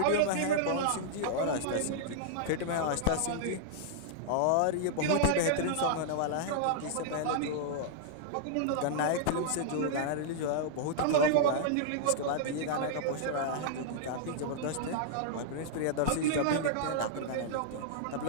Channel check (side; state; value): both; different; correlation -0.01